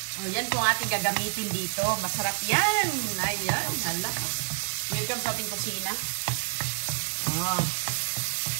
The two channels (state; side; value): silent; left; digital silence